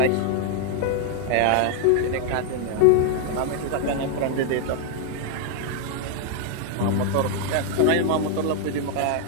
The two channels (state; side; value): different; both; correlation 0.00